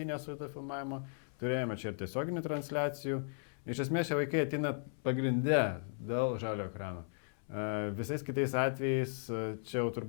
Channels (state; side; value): silent; right; 54 dB below the other